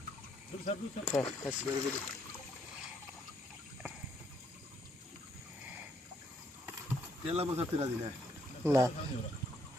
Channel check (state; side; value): normal; both; correlation 0.71